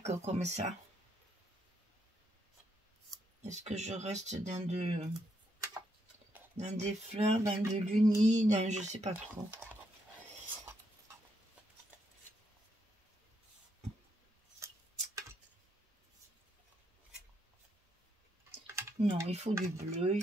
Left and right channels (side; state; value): both; normal; correlation 0.77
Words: comme ça. Est-ce que je reste dans des fleurs, dans de l'uni, dans je sais pas trop. Non, il faut du bleu,